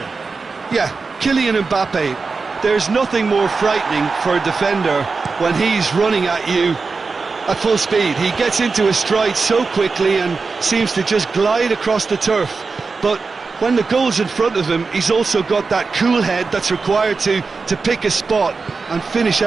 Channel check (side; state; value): left; quieter; 4.4 dB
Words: Yeah, Kylian Mbappe. There's nothing more frightening for a defender when he's running at you at full speed. He gets into a stride so quickly and seems to just glide across the turf. But when the goal's in front of him, he's also got that cool head that's required to pick a spot and finish